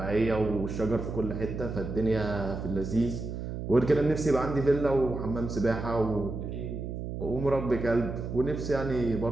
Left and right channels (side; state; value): right; noise; hum, 6 dB below the sound